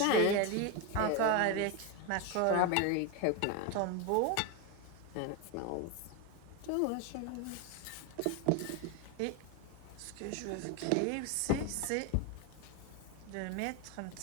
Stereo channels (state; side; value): different; both; correlation 0.02